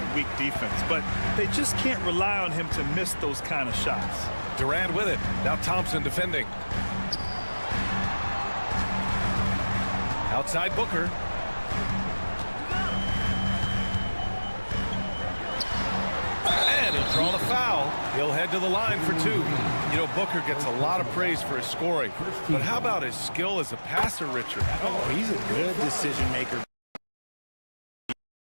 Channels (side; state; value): both; inverted; correlation -1.00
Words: weak defense, but they just can't rely on him to miss those kind of shots. Durant with it. Now Thompson defending. Outside Booker. And he'll draw the foul. He'll head to the line for 2. You know, Booker gets a lot of praise for his scoring. But how about his skill as a passer, Richard? Oh, he's a good decision maker.